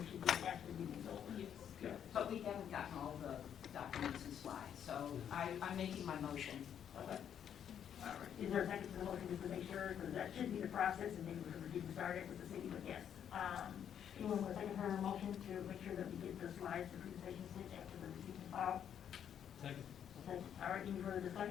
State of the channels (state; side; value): quieter; right; 9.0 dB